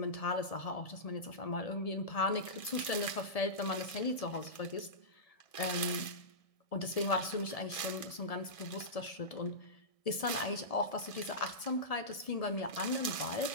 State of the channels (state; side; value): late; right; 1.7 ms